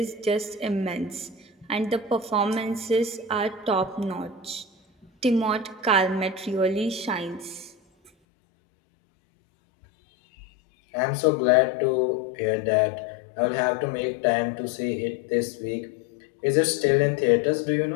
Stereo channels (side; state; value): right; drops out; at 8.1 s